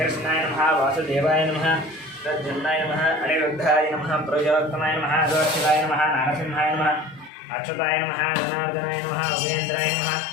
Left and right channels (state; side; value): drops out; right; at 7.3 s